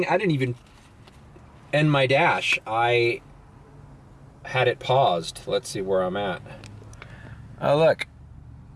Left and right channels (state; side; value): identical; both; correlation 1.00